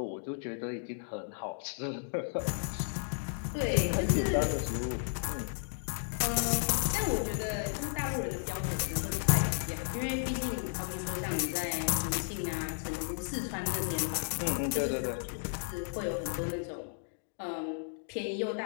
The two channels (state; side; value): silent; right; digital silence